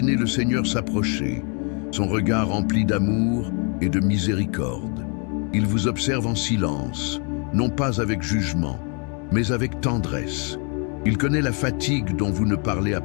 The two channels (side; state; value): right; quieter; 36.8 dB